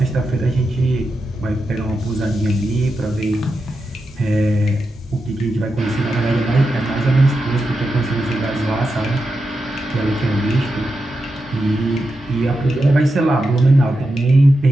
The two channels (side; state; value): both; normal; correlation 0.88